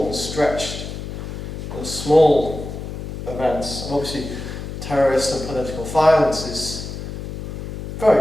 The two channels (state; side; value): noise; left; hum, 8 dB below the sound